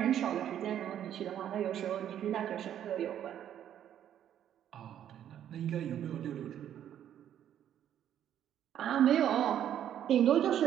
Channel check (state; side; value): quieter; left; 10.4 dB